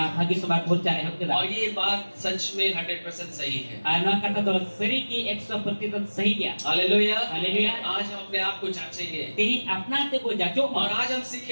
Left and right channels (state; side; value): inverted; both; correlation -1.00